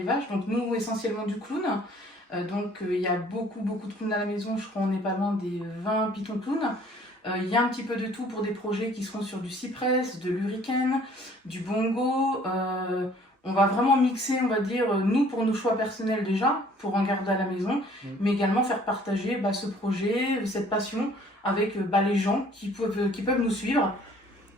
donc nous essentiellement du clown. Donc il y a beaucoup de clowns à la maison, je crois on n'est pas loin des 20 Python clowns. Il y a un petit peu de tout pour des projets qui seront sur du cypress, de l'hurricane, du bongo. On va vraiment mixer, on va dire, nous pour nos choix personnels déjà, pour en garder à la maison, mais également faire partager ce projet, cette passion avec les gens qui peuvent nous suivre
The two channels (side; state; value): both; normal; correlation 0.56